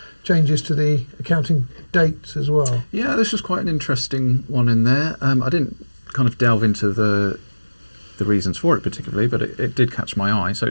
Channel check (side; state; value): both; inverted; correlation -1.00